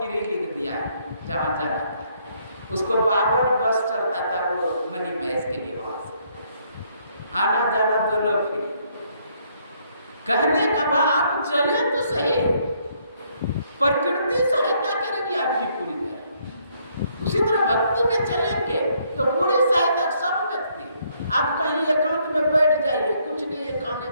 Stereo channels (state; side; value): inverted; both; correlation -0.69